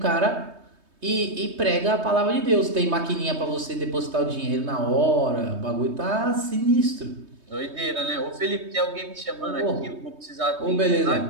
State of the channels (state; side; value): late; left; 3.2 ms